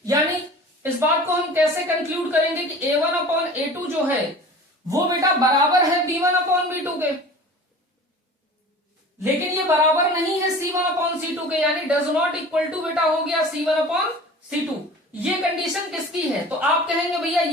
यानी इस बात को हम कैसे कंक्लूड करेंगे कि a1/a2 जो है वो बेटा बराबर है b1/b2 के, लेकिन ये बराबर नहीं है C1/C2 के, यानी डज नॉट इक्वल टू बेटा हो गया C1/C2। ये कंडीशन किसकी है, तो आप कहेंगे भैया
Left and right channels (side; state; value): both; normal; correlation 0.40